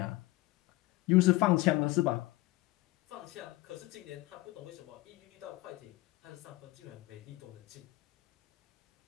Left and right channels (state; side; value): quieter; right; 19.8 dB